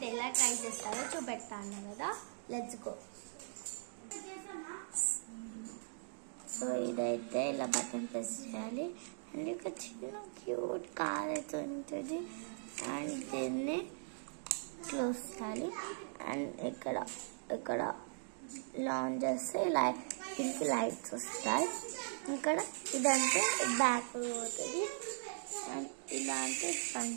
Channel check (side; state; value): left; silent; digital silence